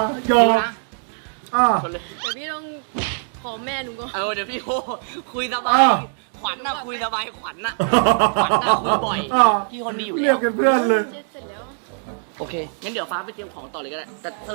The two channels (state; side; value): silent; left; digital silence